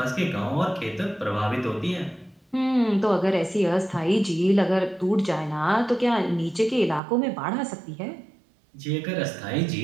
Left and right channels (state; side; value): drops out; left; at 7.0 s